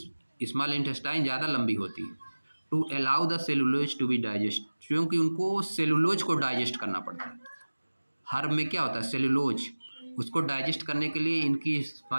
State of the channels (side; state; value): both; inverted; correlation -1.00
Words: इंटेस्टाइन ज़्यादा लंबी होती है। To allow the cellulose to be digest, क्योंकि उनको सेलुलोज को डाइजेस्ट करना पड़ता है। हर्ब में क्या होता है, सेलुलोज, उसको डाइजेस्ट करने के लिए इनकी